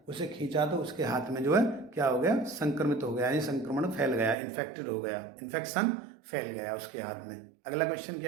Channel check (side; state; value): left; drops out; at 4.4 s